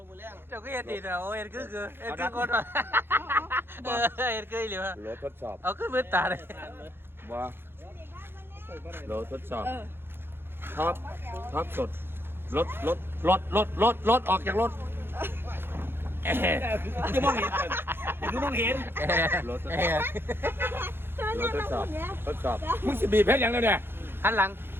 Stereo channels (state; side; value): late; left; 0.11 ms